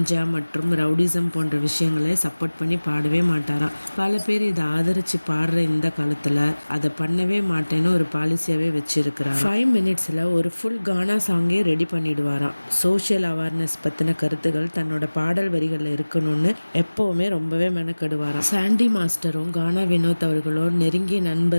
மற்றும் ரவுடிசம் போன்ற விஷயங்களை சப்போர்ட் பண்ணி பாடவே மாட்டாராம். பல பேர் இதை ஆதரித்து பாடுற இந்த காலத்தில் அதை பண்ணவே மாட்டேன்னு ஒரு பாலிசியாகவே வச்சுருக்கிறார். 5 மினிட்ஸில் ஒரு ஃபுல் கானா சாங்கே ரெடி பண்ணிடுவாராம். சோஷியல் அவேர்னஸ் பற்றின கருத்துக்கள் தன்னோட பாடல் வரிகளில் இருக்கணும்னு எப்போவுமே ரொம்பவே மெனக்கெடுவாராம். சாண்டி மாஸ்டரும் கானா வினோத் அவர்களும் நெருங்கிய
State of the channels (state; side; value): inverted; both; correlation -1.00